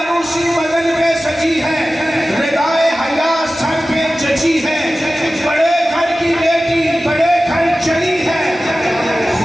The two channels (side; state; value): both; normal; correlation 0.95